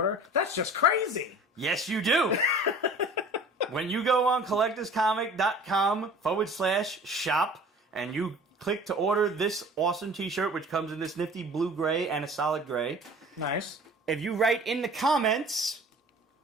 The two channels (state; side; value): normal; both; correlation 0.45